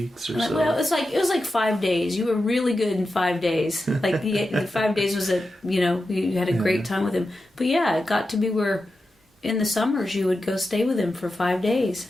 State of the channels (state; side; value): normal; both; correlation 0.91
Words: or so. Well, it was like 5 days. You were really good in 5 days. Like the 5 days was you had a great time with him. But yeah, it got to be where in the summers you would go stay with him for 5 days.